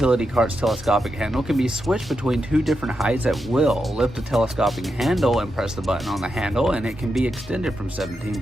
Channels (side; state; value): both; normal; correlation 0.86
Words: cart's telescopic handle can be switched between 2 different heights at will. Lift the telescopic handle and press the button on the handle, and it can be extended from